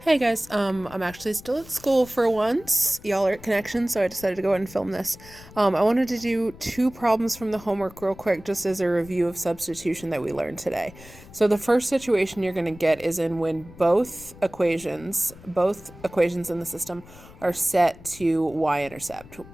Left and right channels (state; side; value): noise; left; rumble, 20 dB below the sound